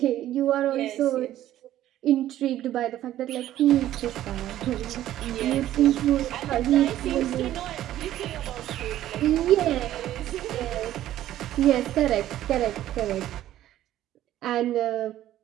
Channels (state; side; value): quieter; left; 13.1 dB